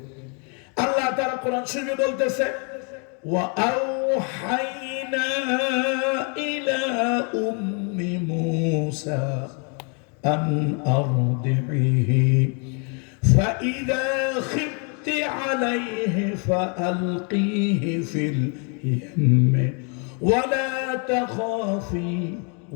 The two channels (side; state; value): right; quieter; 37.6 dB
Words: আল্লাহ তাআলা কোরআন শরীফে বলতেছে, ওয়া আওহাইনা ইলা উম্মি মূসা আন আরদিহি ফাইযা খিফতি আলাইহি ফাআলকিহি ফিল ইয়াম্মি ওয়ালা তাখাফি